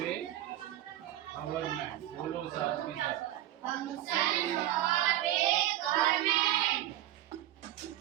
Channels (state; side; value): quieter; left; 13.9 dB